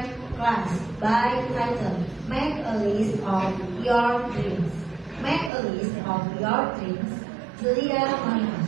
Class by title Make a List of Your Dreams. Make a list of your dreams. Julia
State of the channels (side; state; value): left; drops out; at 5.5 s